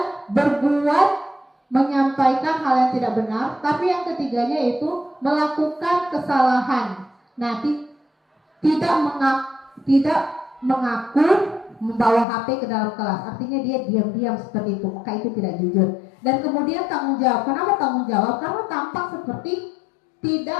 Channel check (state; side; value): drops out; right; at 12.2 s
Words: berbuat, menyampaikan hal yang tidak benar, tapi yang ketiganya itu melakukan kesalahan. Nah, tidak mengaku membawa HP ke dalam kelas, artinya dia diam-diam seperti itu, maka itu tidak jujur. Dan kemudian tanggung jawab. Kenapa tanggung jawab? Karena tampak seperti